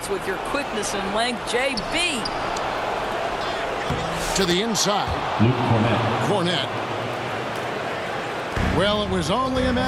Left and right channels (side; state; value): both; identical; correlation 1.00